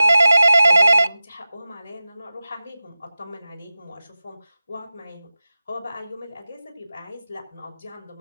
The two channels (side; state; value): both; inverted; correlation -0.96